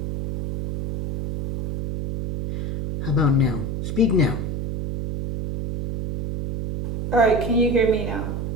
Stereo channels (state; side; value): noise; right; hum, 3 dB below the sound